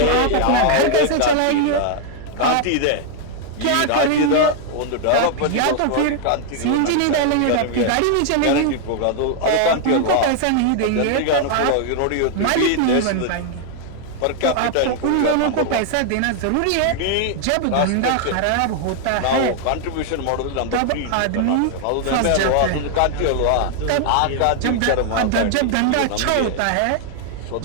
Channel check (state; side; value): different; both; correlation 0.00